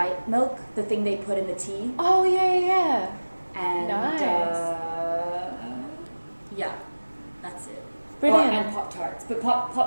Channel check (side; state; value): both; inverted; correlation -1.00